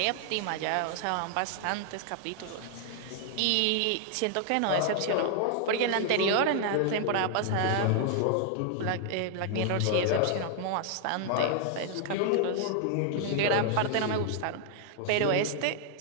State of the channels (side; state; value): both; different; correlation 0.00